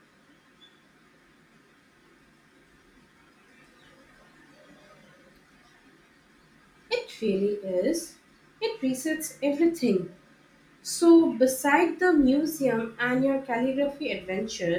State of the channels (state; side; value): identical; both; correlation 1.00